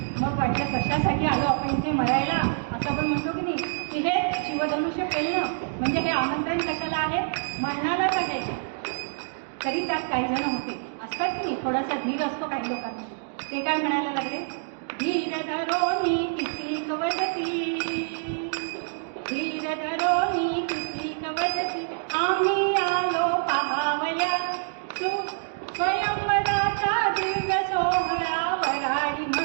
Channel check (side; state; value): left; silent; digital silence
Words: मग वाटलं कशासाठी आलो आपण इथे मरायला, असं आपण म्हणतो की नाही की हे शिवधनुष्य पेलणं म्हणजे हे आमंत्रण कशाला आहे, मरणालाच आहे. तरी त्यात काही जण होते असतात की नाही, थोडासा धीर असतो काही लोकांना. ते काय म्हणायला लागले, धीर धरोनी किती कवदती, धीर धरोनी किती कवदती, आम्ही आलो पाहावया स्वयंवराचा दिव्य सोहळा, वराडी